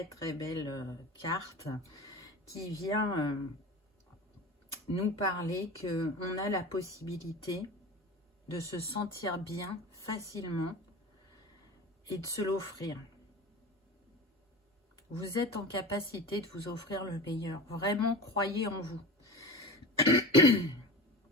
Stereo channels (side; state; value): both; normal; correlation 0.32